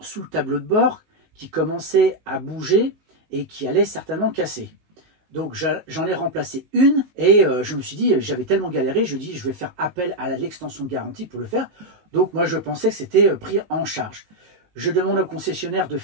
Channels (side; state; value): left; late; 19 ms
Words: le tableau de bord qui commençaient à bouger et qui allaient certainement casser. Donc j'en ai remplacé une et je me suis dit, j'avais tellement galéré, je dis je vais faire appel à l'extension de garantie pour le faire. Donc moi je pensais que c'était pris en charge. Je demande au concessionnaire de